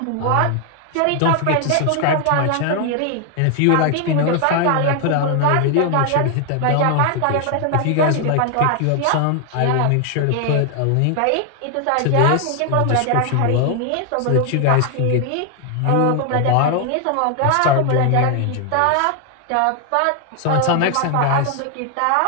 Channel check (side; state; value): both; different; correlation 0.00